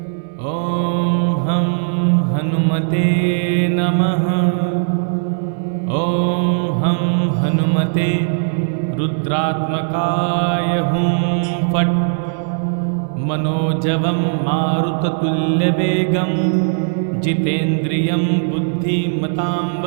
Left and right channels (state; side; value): silent; left; digital silence